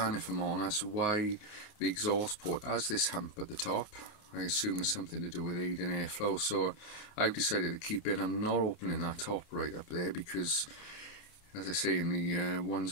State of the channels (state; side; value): late; right; 29 ms